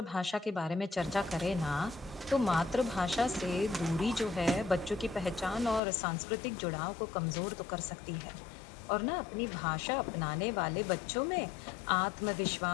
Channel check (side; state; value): right; drops out; at 5.8 s